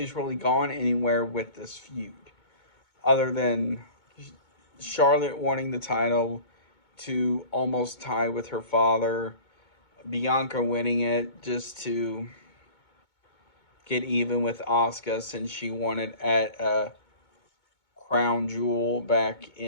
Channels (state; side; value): late; right; 2.2 ms